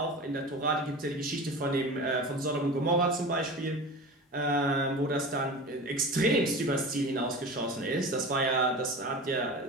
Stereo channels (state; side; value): normal; both; correlation 0.32